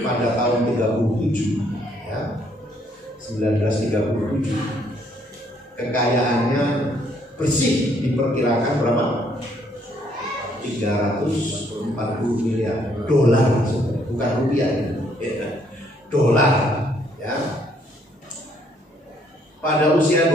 tahun 37 ya, 1937, kekayaannya bersih diperkirakan berapa? 340 miliar dolar, bukan rupiah ya. Dolar ya. Pada usia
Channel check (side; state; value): both; normal; correlation 0.68